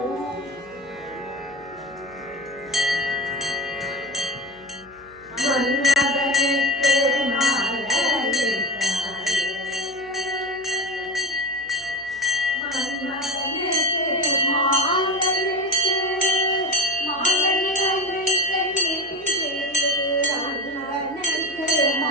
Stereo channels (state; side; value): noise; left; hum, 28 dB below the sound